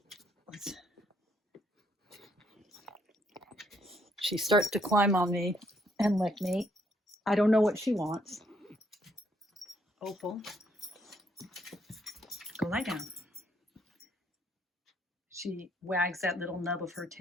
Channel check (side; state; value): both; normal; correlation 0.71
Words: starts to climb on me and lick me. I don't know what she wants. Opal, go lie down. She wags that little nub of her